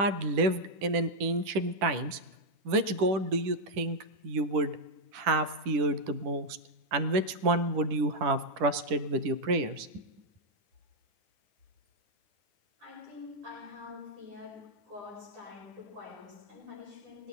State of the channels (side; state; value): left; late; 10 ms